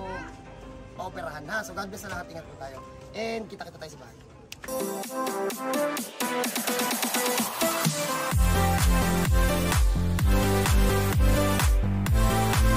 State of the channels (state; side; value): identical; both; correlation 1.00